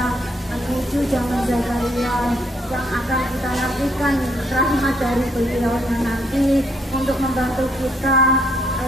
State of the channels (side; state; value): both; normal; correlation 0.70